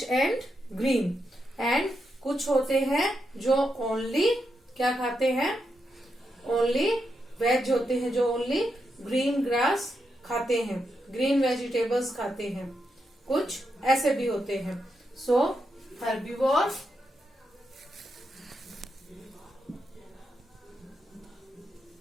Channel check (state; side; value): normal; both; correlation 0.84